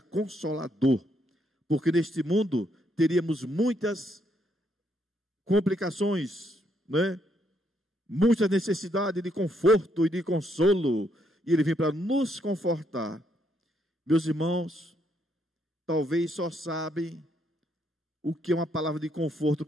Consolador. Porque neste mundo teríamos muitas complicações, né? Muita necessidade de conforto e de consolo. E ele vem para nos confortar. Meus irmãos, talvez só sabem o que é uma palavra de conforto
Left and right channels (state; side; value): normal; both; correlation 0.74